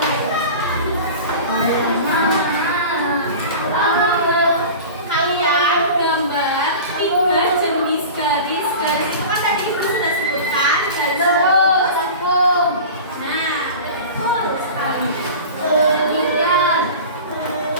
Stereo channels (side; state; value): both; inverted; correlation -0.35